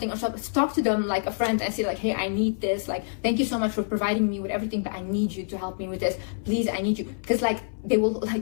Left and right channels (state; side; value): silent; right; 59 dB below the other